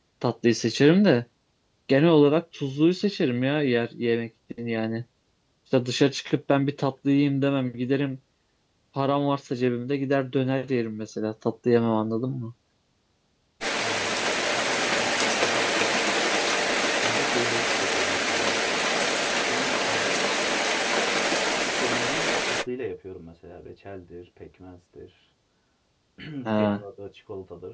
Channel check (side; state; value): both; identical; correlation 1.00